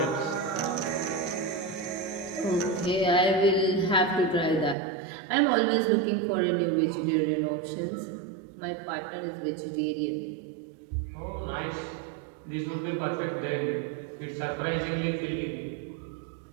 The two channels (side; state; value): left; drops out; at 4.8 s